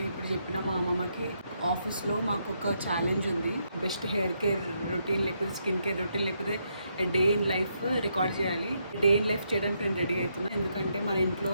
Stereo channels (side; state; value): both; inverted; correlation -0.78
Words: ఇప్పుడు చెప్పిన మా అమ్మమ్మకి ఆఫీస్లో మాకు ఒక ఛాలెంజ్ ఉంది. బెస్ట్ హెయిర్ కేర్ రొటీన్ లేకపోతే స్కిన్ కేర్ రొటీన్ లేకపోతే డే ఇన్ లైఫ్ రికార్డ్ చేయాలి. డే ఇన్ లైఫ్ చేయడానికి నేను రెడీ అవుతున్నాను. ఎందుకంటే మన ఇంట్లో